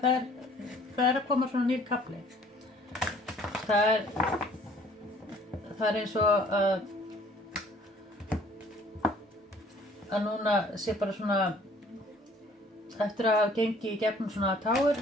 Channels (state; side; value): normal; both; correlation 0.56